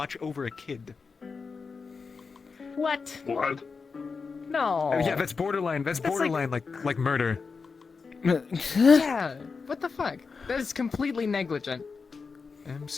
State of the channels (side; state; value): right; quieter; 4.9 dB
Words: over a kid. What? What? No. Yeah, that's borderline. That's borderline like murder. Yeah. What the fuck? That is completely negligent.